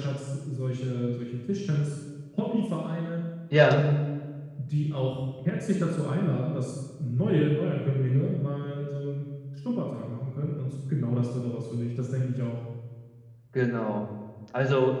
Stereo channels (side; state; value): both; identical; correlation 1.00